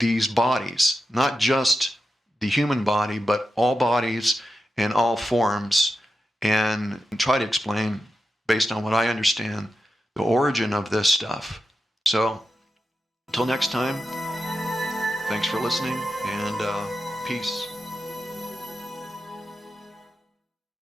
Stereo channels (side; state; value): both; normal; correlation 0.89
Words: bodies, not just the human body, but all bodies and all forms, and try to explain, based on what I understand, the origin of this stuff. So, Until next time, thanks for listening, and peace.